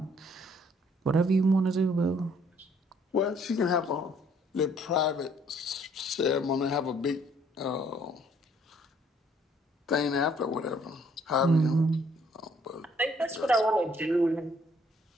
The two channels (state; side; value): normal; both; correlation 0.64